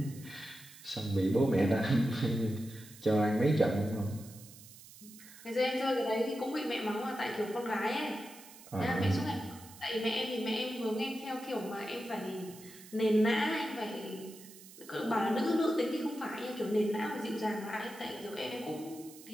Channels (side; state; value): right; noise; hiss, 19 dB below the sound